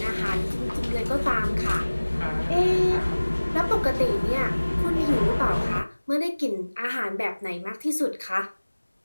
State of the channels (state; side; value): inverted; both; correlation -1.00